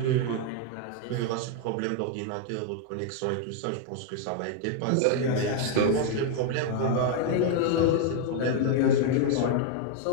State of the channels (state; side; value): different; both; correlation 0.00